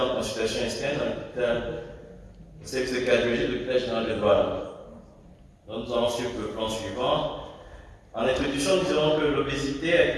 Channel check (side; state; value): both; identical; correlation 1.00